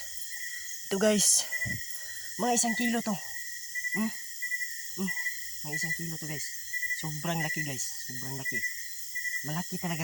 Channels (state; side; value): noise; right; hiss, 14 dB below the sound